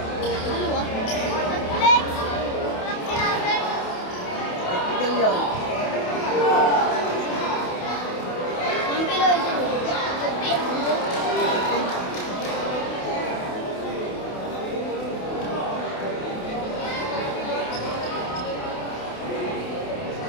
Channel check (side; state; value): right; late; 28 ms